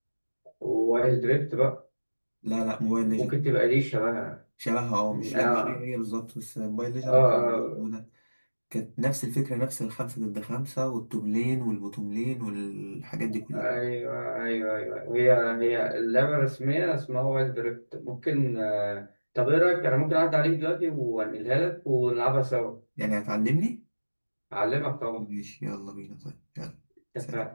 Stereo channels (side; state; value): both; inverted; correlation -1.00